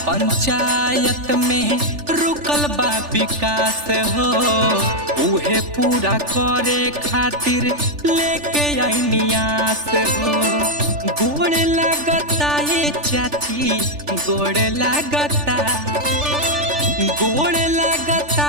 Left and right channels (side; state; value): left; late; 3.4 ms